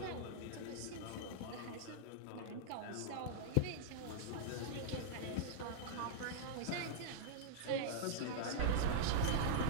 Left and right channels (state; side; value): different; both; correlation -0.02